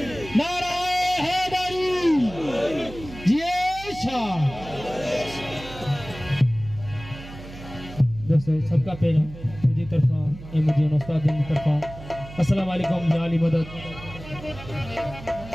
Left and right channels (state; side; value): noise; right; hum, 15 dB below the sound